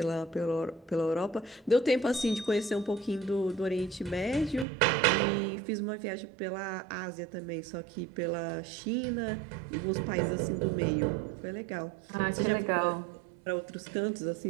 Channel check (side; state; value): left; drops out; at 4.7 s